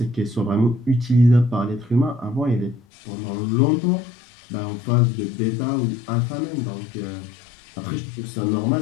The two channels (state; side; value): drops out; right; at 2.8 s